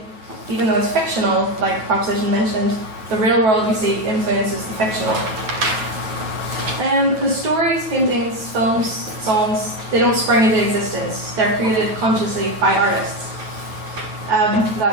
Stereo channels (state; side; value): late; left; 9.2 ms